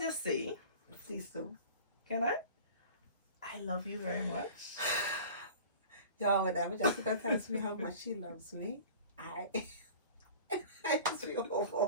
say, Please do. can I? I love you very much. Y'all, whenever Jessica tells me how much she loves me, I just feel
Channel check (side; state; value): both; inverted; correlation -0.42